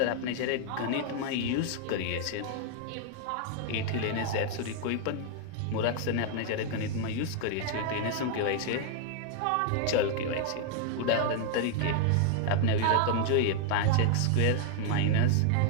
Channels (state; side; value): different; both; correlation 0.00